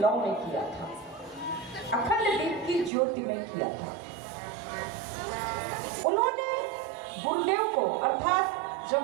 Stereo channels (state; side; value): drops out; left; at 2.9 s